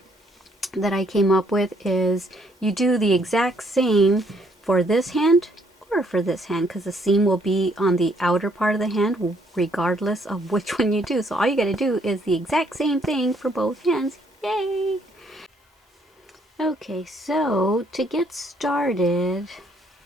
that I came up with is you do the exact same for this hand or for this hand, because the seam will be on the outer part of the hand regardless of which one you do. So all you got to do is the exact same thing for both hands. Yay! Okay, so to get started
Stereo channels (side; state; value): both; normal; correlation 0.68